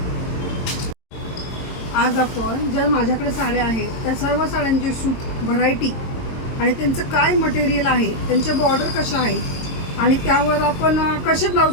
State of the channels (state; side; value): late; right; 22 ms